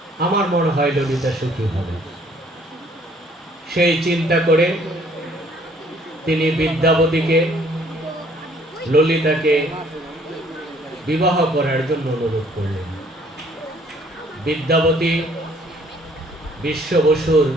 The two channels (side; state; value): both; normal; correlation 0.61